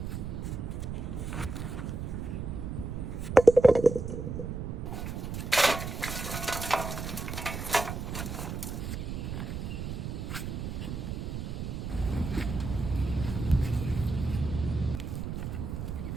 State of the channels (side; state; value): right; noise; rumble, 5 dB below the sound